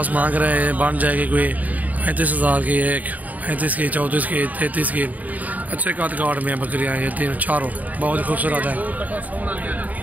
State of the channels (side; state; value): left; late; 0.076 ms